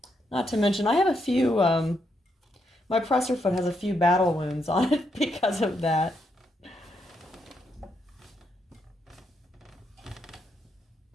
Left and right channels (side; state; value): both; normal; correlation 0.79